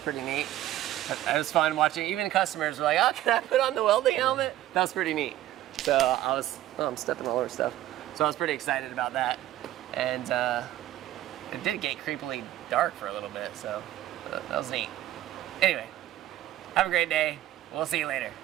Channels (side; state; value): left; quieter; 13.7 dB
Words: neat. It was fun watching. Even customers were like, oh, can I put on the welding helmet? That was pretty neat. So I'm stepping all over stuff. So I was pretty excited about that. And it did get creepily dark for a little bit, so that was neat. Anyway, have a great day. We'll see you later.